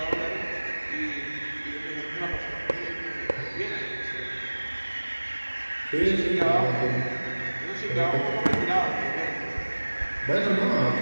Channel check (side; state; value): both; inverted; correlation -1.00